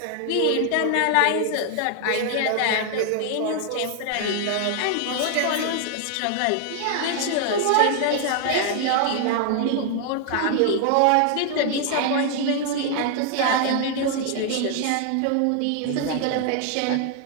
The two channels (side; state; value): both; different; correlation 0.00